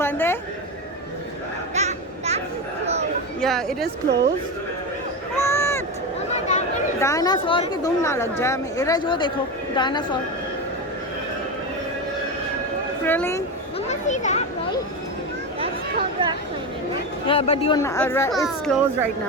बंद है। That's closed. Yeah, it is closed. What? Mama, that one is dinosaur की दुम ना लग जाए हमें। इधर जो देखो dinosaur. Really? Mama, see that, right? That's called rock climbing, right? Yeah, but you're not, it's closed right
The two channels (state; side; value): normal; both; correlation 0.18